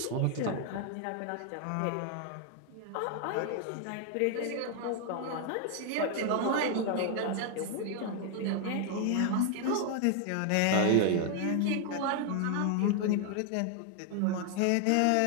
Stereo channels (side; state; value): both; different; correlation 0.00